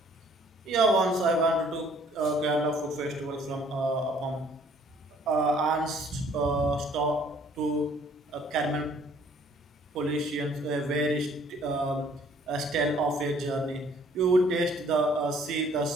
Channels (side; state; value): both; normal; correlation 0.59